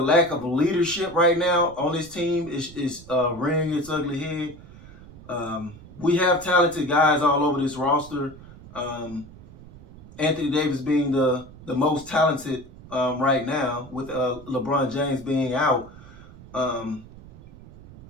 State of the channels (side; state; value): right; noise; rumble, 19 dB below the sound